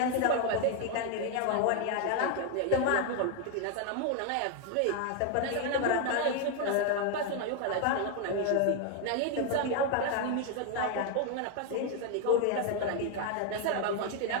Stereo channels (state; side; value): different; both; correlation 0.01